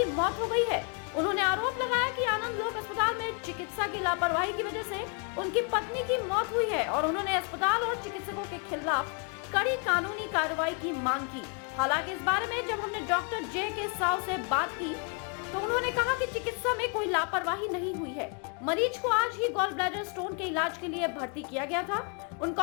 मौत हो गई है। उन्होंने आरोप लगाया कि आनंद लोक अस्पताल में चिकित्सा की लापरवाही की वजह से उनकी पत्नी की मौत हुई है और उन्होंने अस्पताल और चिकित्सकों के खिलाफ कड़ी कानूनी कार्रवाई की मांग की। हालांकि इस बारे में जब हमने डॉक्टर जे के साव से बात की तो उन्होंने कहा कि चिकित्सा में कोई लापरवाही नहीं हुई है। मरीज को आज ही गॉल ब्लैडर स्टोन के इलाज के लिए भर्ती किया गया था। उनका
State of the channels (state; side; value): quieter; right; 37.5 dB